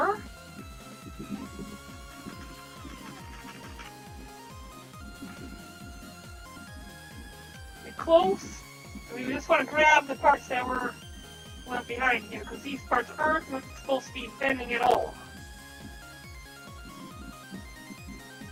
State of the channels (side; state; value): both; identical; correlation 1.00